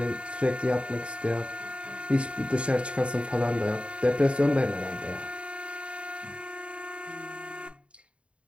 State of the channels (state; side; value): late; left; 0.058 ms